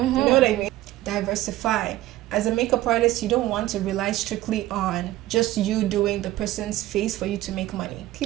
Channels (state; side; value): quieter; left; 15.8 dB